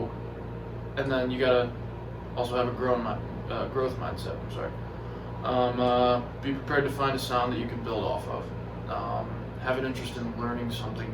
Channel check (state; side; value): identical; both; correlation 1.00